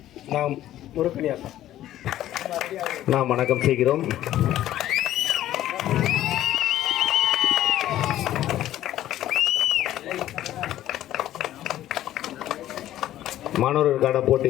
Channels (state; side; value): quieter; right; 13.2 dB